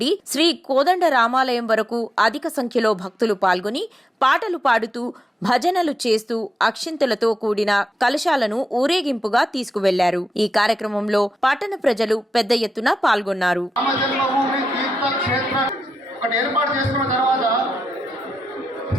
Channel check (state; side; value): normal; both; correlation 0.87